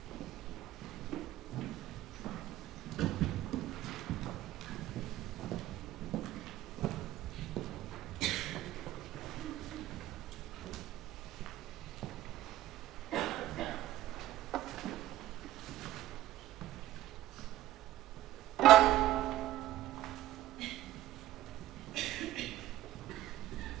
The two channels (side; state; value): left; quieter; 14.7 dB